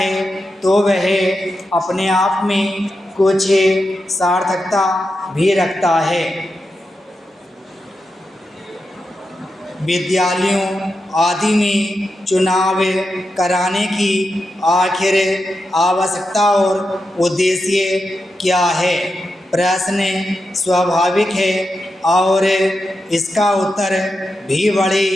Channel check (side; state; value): both; normal; correlation 0.88